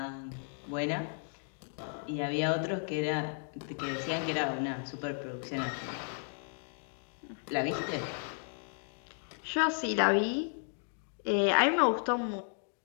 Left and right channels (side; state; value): right; silent; 55 dB below the other